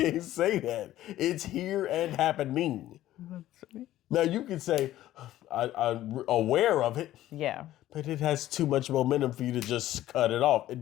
say that. It's here and happening. Now you can say, I'm aware of it. Yeah. But it has too much momentum for you to just cut it off. It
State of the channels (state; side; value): quieter; right; 14.0 dB